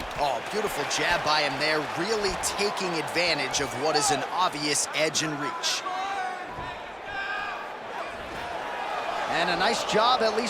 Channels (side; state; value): both; identical; correlation 1.00